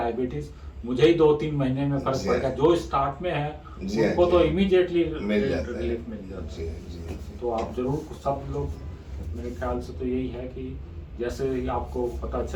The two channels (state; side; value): identical; both; correlation 1.00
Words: मुझे ही 2-3 महीने में फ़र्क पड़ गया। जो स्टार्ट में है उनको तो इमीडिएटली रिलीफ मिल जाता है। तो आप ज़रूर सब लोग, मेरे ख्याल से तो यही है कि जैसे ही आपको पता